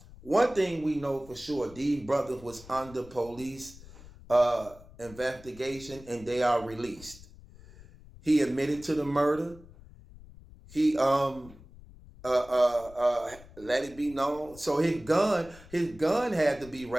One thing we know for sure, these brothers was under police investigation and they are released. He admitted to the murder. He let it be known. So his gun had to be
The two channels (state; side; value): noise; left; rumble, 20 dB below the sound